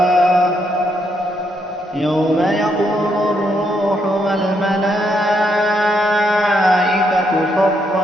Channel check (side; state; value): both; normal; correlation 0.76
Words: يوم يقوم الروح والملائكة